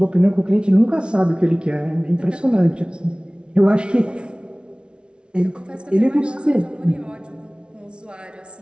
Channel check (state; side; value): late; left; 0.057 ms